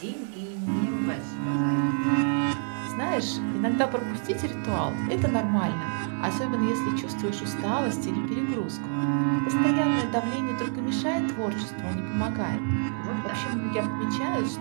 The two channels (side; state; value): left; silent; 60 dB below the other